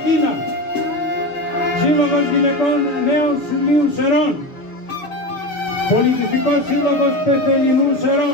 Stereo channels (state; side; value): late; right; 6.5 ms